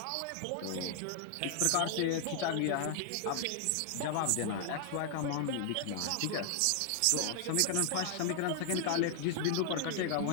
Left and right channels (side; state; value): both; different; correlation 0.00